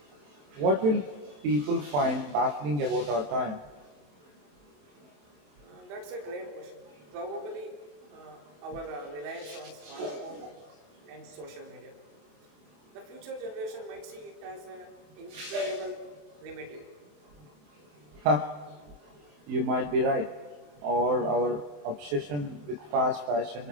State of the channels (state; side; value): late; left; 27 ms